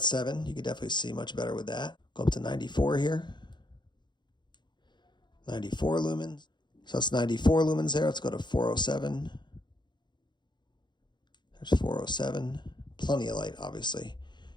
7. You can definitely see much better with that. Go up to 94 here. 94 lumens. So that's 94 lumens there. Let's go to 407. There's 407. Plenty of light, obviously,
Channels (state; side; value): late; right; 0.22 ms